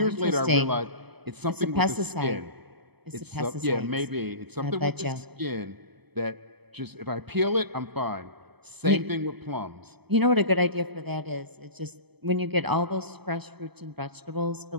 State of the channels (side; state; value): left; late; 0.98 ms